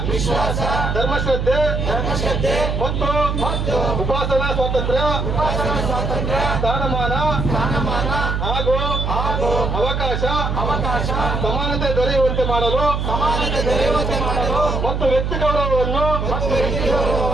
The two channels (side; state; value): right; noise; hum, 1 dB below the sound